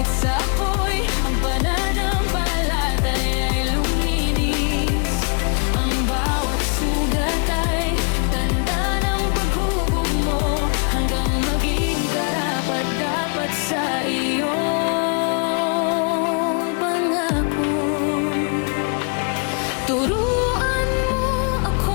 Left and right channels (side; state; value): right; quieter; 39.7 dB